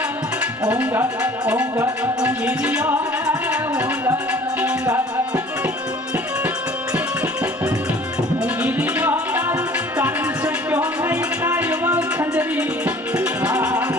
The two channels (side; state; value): both; normal; correlation 0.50